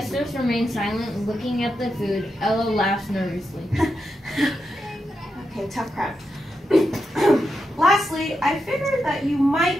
remain silent, looking at the food. Ella laughs nervously. Okay, tough crab. Lastly, I figured that you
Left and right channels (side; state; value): both; normal; correlation 0.86